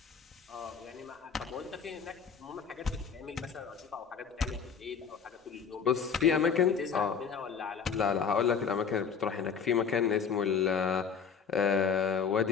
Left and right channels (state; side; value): quieter; right; 6.6 dB